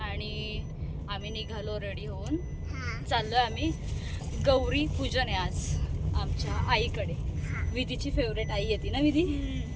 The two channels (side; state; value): both; identical; correlation 1.00